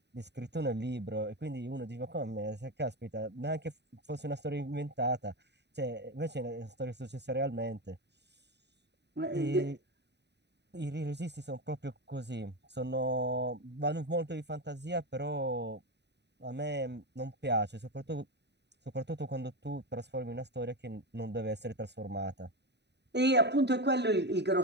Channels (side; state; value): left; late; 0.50 ms